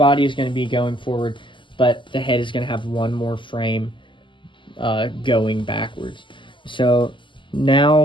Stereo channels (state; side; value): late; right; 0.24 ms